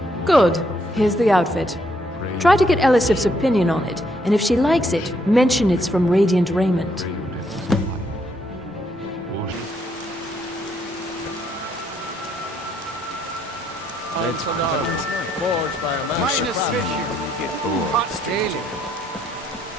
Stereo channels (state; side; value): normal; both; correlation 0.72